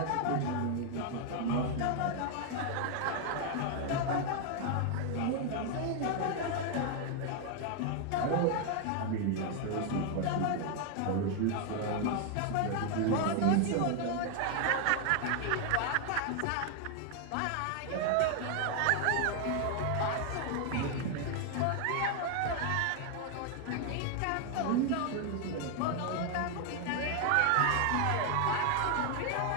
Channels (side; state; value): both; different; correlation 0.01